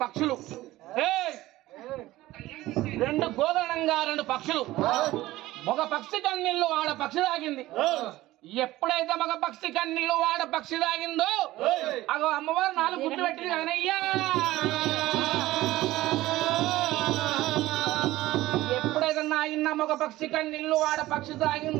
పక్షులు రెండు గోదరణంగా రెండు పక్షులు ఒక పక్షి కన్నీళ్ళు ఆడ పక్షి తాగింది ఎప్పుడైతే మగ పక్షి కన్నీళ్ళు వాడ పక్షి తాగిందో అగో అమ్మవారు 4 గుడ్లు పెట్టింది కదనయ్యా ఎప్పుడైతే నాయన్న మగ పక్షి కన్నీళ్ళు వాడ పక్షి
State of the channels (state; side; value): quieter; left; 16.9 dB